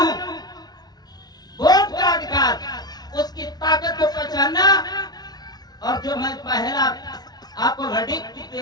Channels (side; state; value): right; late; 0.19 ms